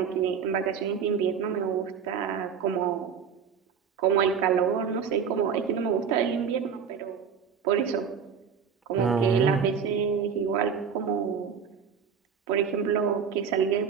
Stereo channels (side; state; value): left; quieter; 6.9 dB